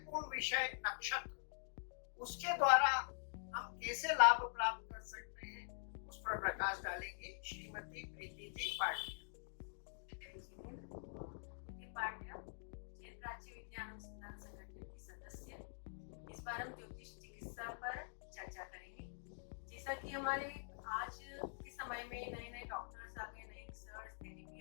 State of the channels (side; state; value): right; silent; digital silence